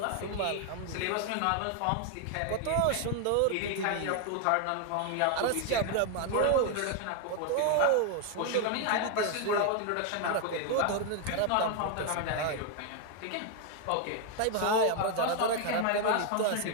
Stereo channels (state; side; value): different; both; correlation 0.00